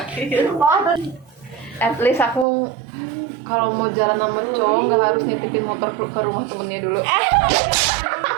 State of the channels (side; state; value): left; drops out; at 2.5 s